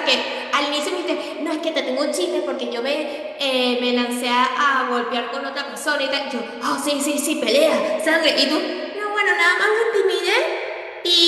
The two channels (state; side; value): identical; both; correlation 1.00